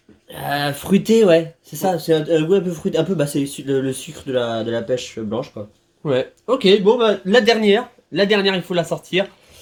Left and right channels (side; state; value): both; identical; correlation 1.00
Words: fruité, ouais. C'est ça, c'est un goût un peu fruité. Un peu, bah, c'est le sucre de la pêche blanche, quoi. Ouais. Ok, bon, bah, la dernière. La dernière, il faut la sortir.